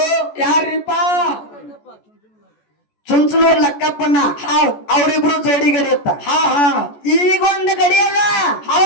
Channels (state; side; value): late; right; 14 ms